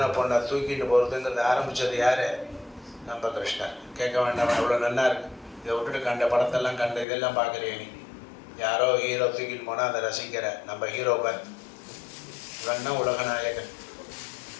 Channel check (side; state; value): right; drops out; at 7.1 s